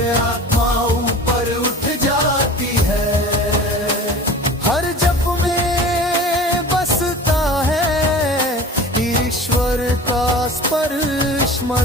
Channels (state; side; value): normal; both; correlation 0.39